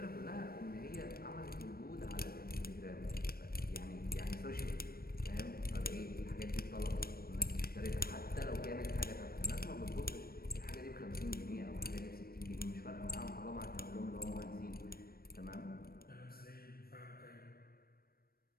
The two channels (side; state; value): right; late; 0.44 ms